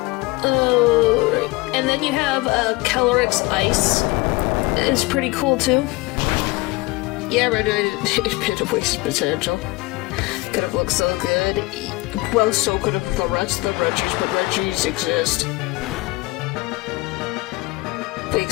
Oh, and then you have Calyrex Ice. It's pretty cool too. Yeah, Regice, it bit of waste potential. Could have looked so good. Well, so could have the rest of the Regis, but Regis exist. If we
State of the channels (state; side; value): quieter; right; 22.3 dB